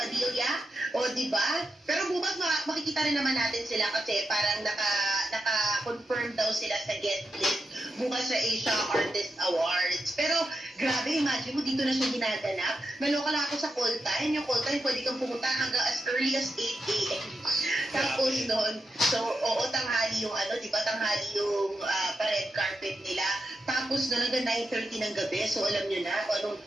O, diba? Pero bukas makikita rin naman natin sila kasi parang naka-confirm daw sila sa guest list bukas sa Asia Artist Awards. Pero, grabe, imagine mo, dito na siya ginaganap. Naloka lang ako sa call time. Yung call time, pwede kang pumunta hanggang as early as 8 a.m. Tapos noon, tanghali yung tanghali yung pa-red carpet nila. Tapos noon hanggang 9:30 ng gabi. So, alam nyo na kung anong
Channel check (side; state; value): both; normal; correlation 0.87